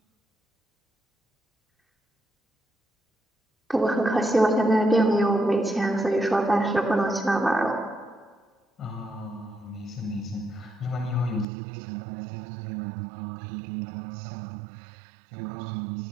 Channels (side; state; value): left; drops out; at 11.5 s